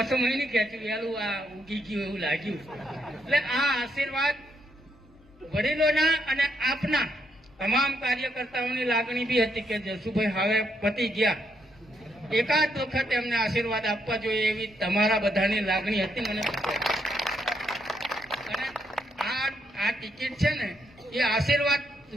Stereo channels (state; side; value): normal; both; correlation 0.76